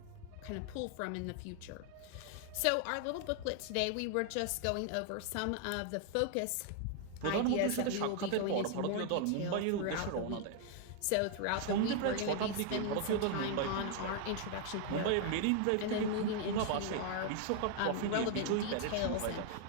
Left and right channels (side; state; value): both; different; correlation 0.00